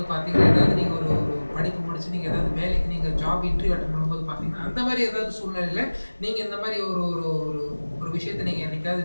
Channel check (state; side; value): inverted; both; correlation -1.00